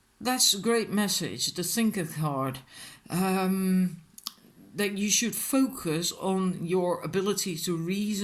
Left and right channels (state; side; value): identical; both; correlation 1.00